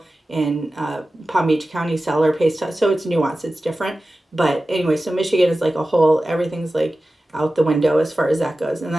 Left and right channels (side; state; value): both; normal; correlation 0.95